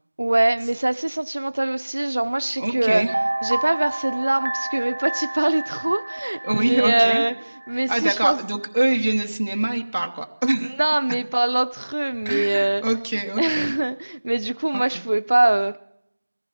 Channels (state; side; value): inverted; both; correlation -1.00